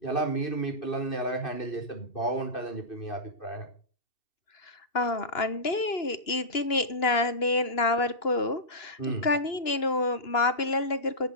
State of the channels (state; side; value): late; right; 2.9 ms